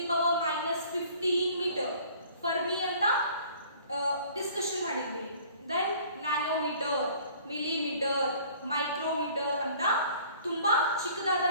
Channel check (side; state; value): both; inverted; correlation -0.52